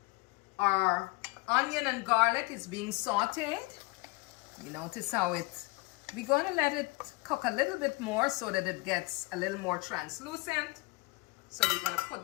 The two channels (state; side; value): quieter; right; 24.4 dB